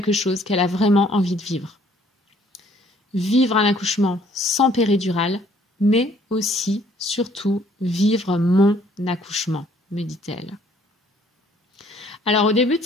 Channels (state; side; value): normal; both; correlation 0.61